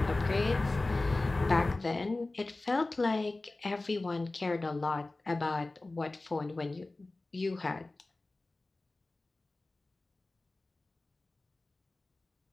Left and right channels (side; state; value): right; quieter; 3.1 dB